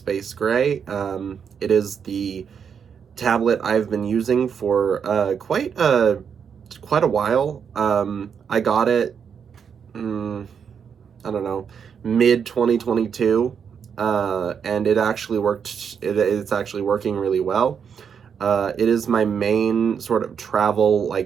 gray. It is the tablet I've been using for quite a while. I got it, I don't know, mid 2022. And it actually worked. It's actually working really well. It is my main sort of travel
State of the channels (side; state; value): left; quieter; 7.1 dB